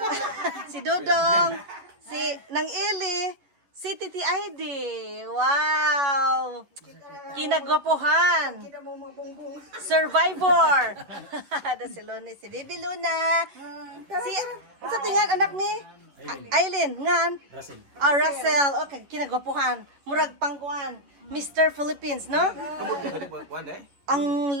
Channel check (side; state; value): left; late; 11 ms